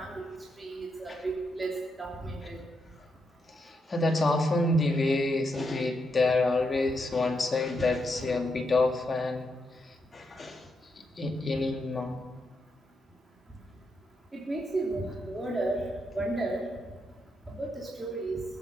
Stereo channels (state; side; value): normal; both; correlation 0.82